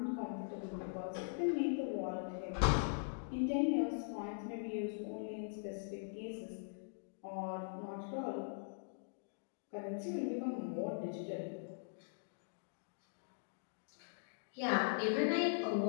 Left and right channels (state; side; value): silent; right; digital silence